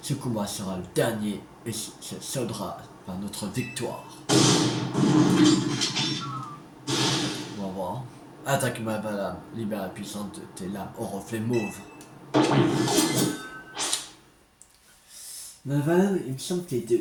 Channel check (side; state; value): both; identical; correlation 1.00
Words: Ce combat sera le dernier et se soldera par notre victoire. On va voir. Attaque Malvalam, libère la puissance de tes lames au reflet mauve. Malvalam, il me semble qu'il est de